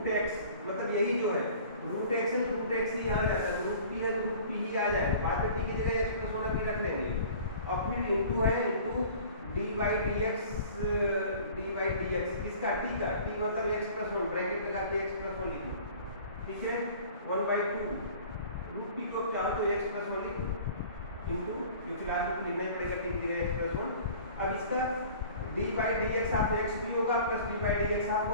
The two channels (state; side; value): inverted; both; correlation -0.46